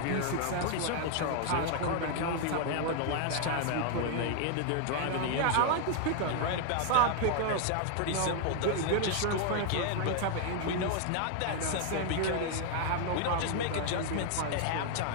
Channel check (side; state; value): both; different; correlation 0.00